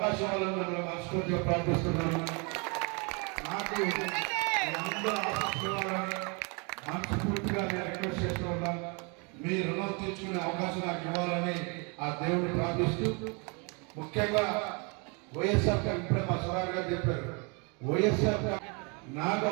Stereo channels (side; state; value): left; quieter; 32.8 dB